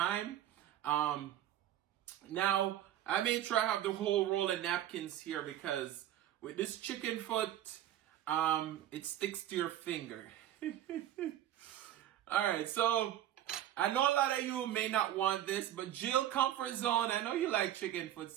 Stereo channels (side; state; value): left; quieter; 12.1 dB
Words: Now, I may try to have the whole roll of napkins here because with this chicken foot, it sticks to your finger. Alright, so I know a lot of you may not want this, but Jill Comfort Zone, I know you like chicken foot,